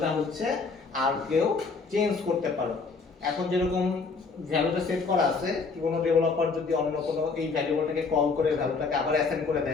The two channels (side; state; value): right; quieter; 4.6 dB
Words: হচ্ছে আর কেউ চেঞ্জ করতে পারো। এখন যেরকম ভ্যালুটা সেট করা আছে, কি কোনো ডেভেলপার যদি অন্য কোনো এই ভ্যারিয়েবলটাকে কল করে ভ্যালুটাকে আবার অ্যাসাইন করে